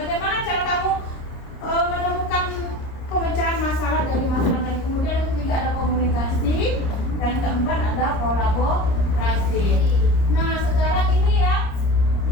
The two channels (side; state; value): right; late; 30 ms